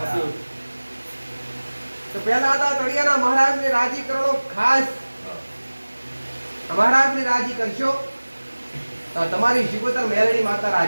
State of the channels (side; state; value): both; inverted; correlation -1.00